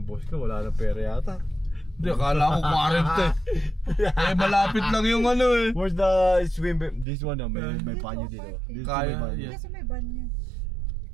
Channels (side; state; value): left; drops out; at 7.1 s